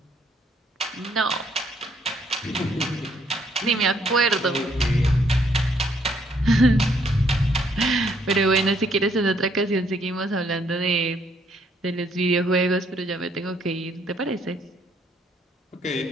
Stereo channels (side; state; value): both; normal; correlation 0.68